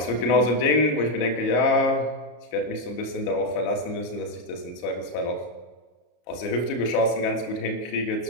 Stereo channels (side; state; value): right; late; 34 ms